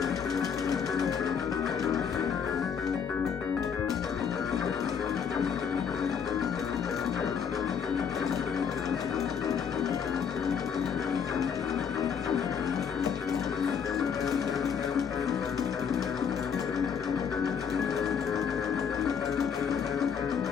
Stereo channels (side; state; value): right; quieter; 7.0 dB